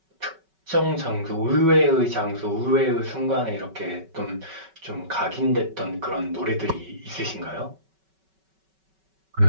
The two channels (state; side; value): late; left; 5.3 ms